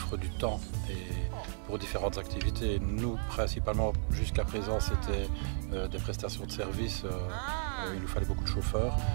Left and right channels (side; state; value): left; silent; digital silence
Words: du temps et pour différentes activités. Nous, principalement, jusqu'à présent, c'était des prestations de services. Il nous fallait beaucoup de chauffeurs.